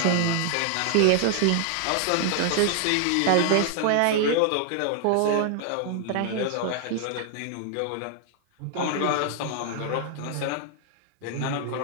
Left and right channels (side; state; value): both; different; correlation 0.00